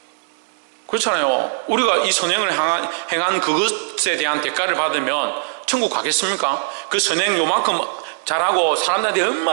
그렇잖아요. 우리가 이 선행을 행한 그것에 대한 대가를 받으면 천국 가겠습니까? 그 선행 요만큼 잘하고 사람들한테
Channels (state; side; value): silent; left; 66 dB below the other